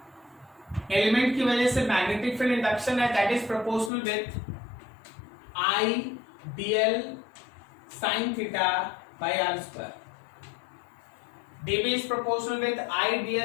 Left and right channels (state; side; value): drops out; right; at 3.9 s